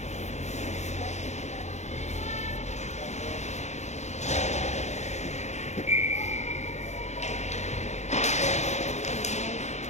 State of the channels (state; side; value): late; right; 0.33 ms